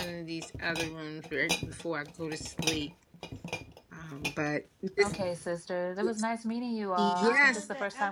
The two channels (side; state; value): both; identical; correlation 1.00